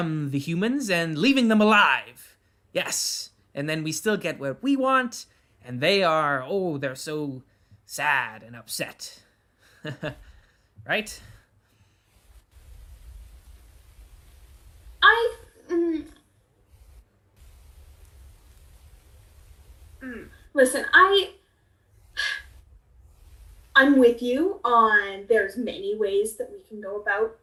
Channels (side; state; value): both; identical; correlation 1.00